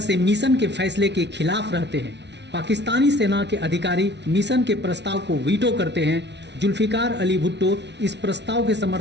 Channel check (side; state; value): left; late; 0.50 ms